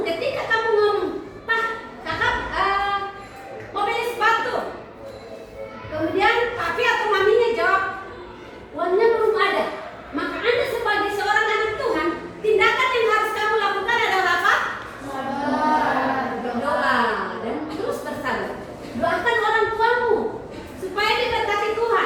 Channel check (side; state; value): both; identical; correlation 1.00